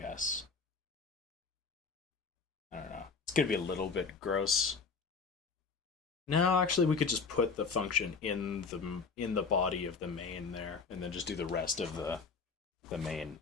I don't know. It's going to be a little bit gross. No, actually, we could just put the function in the body of the main there, and then just do the rest of the main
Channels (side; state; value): right; quieter; 4.9 dB